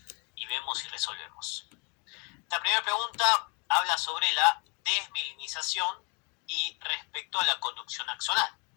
y vemos si resolvemos. La primera pregunta habla sobre la desmielinización y respecto a la conducción axonal.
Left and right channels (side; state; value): right; quieter; 33.0 dB